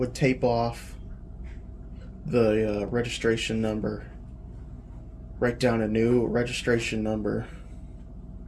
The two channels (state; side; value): identical; both; correlation 1.00